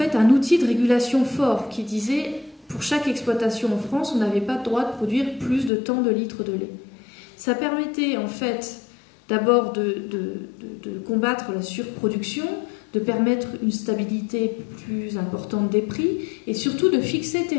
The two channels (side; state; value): right; drops out; at 5.7 s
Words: un outil de régulation fort qui disait pour chaque exploitation en France, on n'avait pas le droit de produire plus de tant de litres de lait. Ça permettait en fait d'abord de combattre la surproduction, de permettre une stabilité plus importante des prix et surtout de fixer